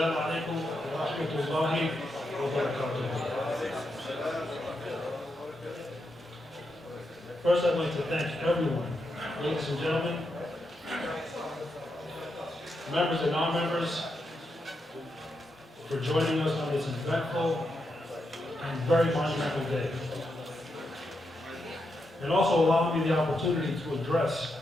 alaikum wa rahmatullahi wa barakatuh. First, I'd like to thank everyone, ladies and gentlemen, members and non-members, for joining us on this eventful and very monumental day. And also allowing me the opportunity to address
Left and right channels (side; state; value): both; normal; correlation 0.84